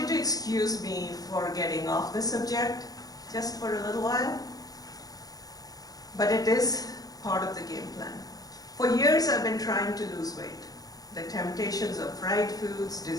to excuse me for getting off the subject just for a little while, but it is part of the game plan. For years, I've been trying to lose weight. The temptations of fried foods,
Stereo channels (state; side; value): late; right; 0.18 ms